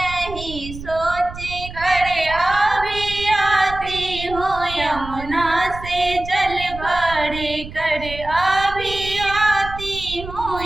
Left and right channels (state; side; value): noise; right; rumble, 12 dB below the sound